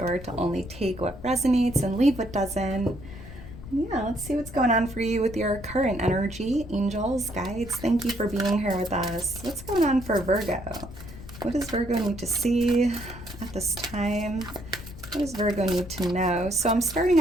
to only take what resonates and leave what doesn't. And yeah, let's see what's going on for you with your current energy. Angels, guides, thank you for being here with us. What's going on for Virgo? What does Virgo need to see at this time? What does Virgo need to know? So I'm starting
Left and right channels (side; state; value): left; noise; rumble, 14 dB below the sound